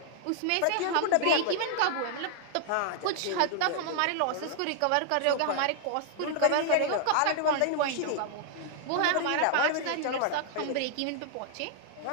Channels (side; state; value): both; different; correlation 0.00